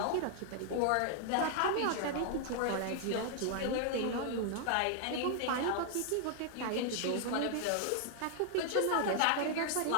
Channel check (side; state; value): both; different; correlation 0.00